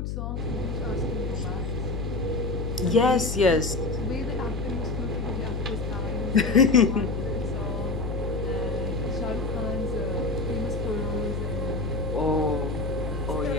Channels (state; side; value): noise; left; hum, 3 dB below the sound